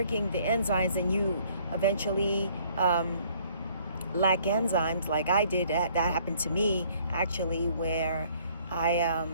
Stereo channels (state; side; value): inverted; both; correlation -0.61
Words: the enzymes, and you eventually lack enzymes, like I did, that happened to me actually, where